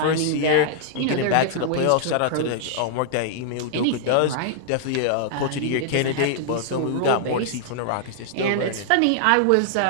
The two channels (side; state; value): both; different; correlation -0.01